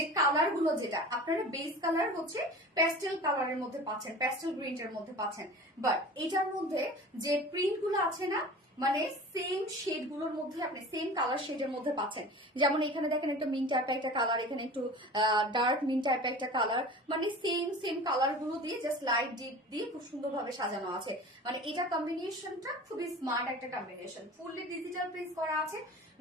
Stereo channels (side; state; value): both; normal; correlation 0.38